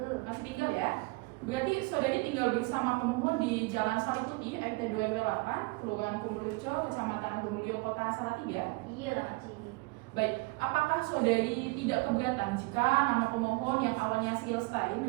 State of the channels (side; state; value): left; quieter; 26.0 dB